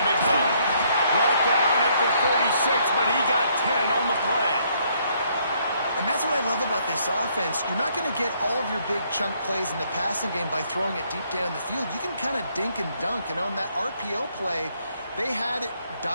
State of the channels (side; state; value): both; inverted; correlation -0.69